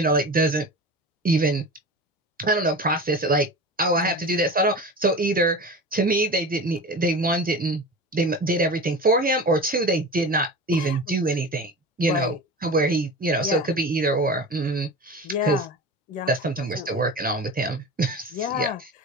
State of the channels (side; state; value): both; normal; correlation 0.31